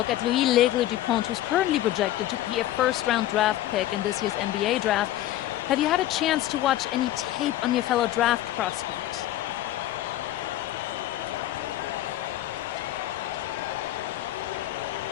at Louis L'Aigle-Dupont, who's currently projected to be a first-round draft pick in this year's NBA draft. Have you had a chance to watch any tape on your fellow draft prospect?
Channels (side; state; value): right; quieter; 14.1 dB